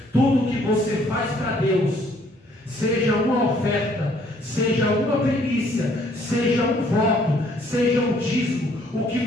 Tudo que você faz para Deus, seja uma oferta, seja uma primícia, seja um voto, seja um dízimo, o que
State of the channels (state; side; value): normal; both; correlation 0.63